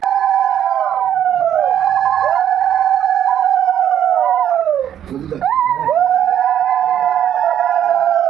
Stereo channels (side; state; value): left; quieter; 10.0 dB